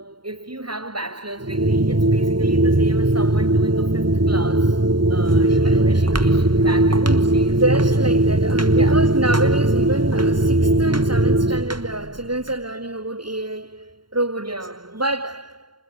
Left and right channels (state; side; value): late; left; 0.72 ms